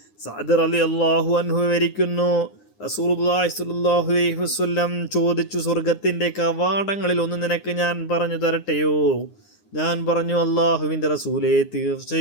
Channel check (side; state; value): right; late; 9.7 ms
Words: സഅദ് റളിയല്ലാഹു അൻഹു വിവരിക്കുന്നു, റസൂലുള്ളാഹി സ്വല്ലല്ലാഹു അലൈഹി വസല്ലം ചോദിച്ചു, സ്വർഗത്തിൻ്റെ കവാടങ്ങളിൽ ഒന്ന് നിനക്ക് ഞാൻ പറഞ്ഞു തരട്ടെയോ? ഞാൻ പറഞ്ഞു, അല്ലാഹുവിൻ്റെ റസൂലേ,